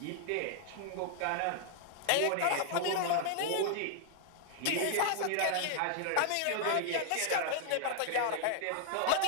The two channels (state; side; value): different; both; correlation -0.01